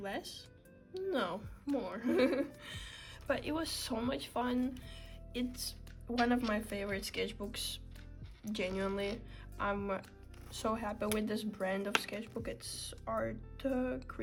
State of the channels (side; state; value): both; identical; correlation 1.00